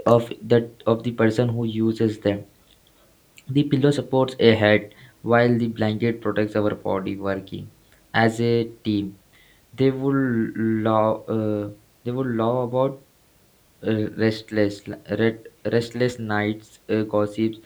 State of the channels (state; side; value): identical; both; correlation 1.00